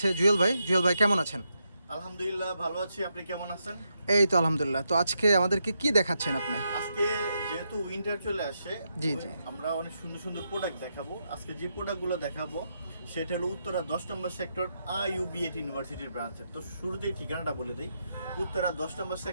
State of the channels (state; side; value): inverted; both; correlation -0.82